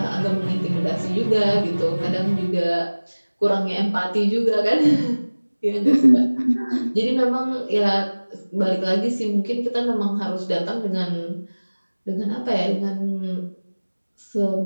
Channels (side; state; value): both; inverted; correlation -1.00